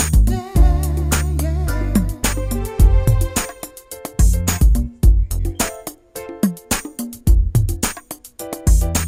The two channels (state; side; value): identical; both; correlation 1.00